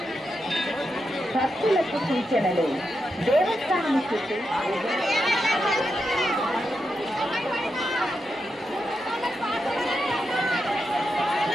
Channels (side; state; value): both; normal; correlation 0.86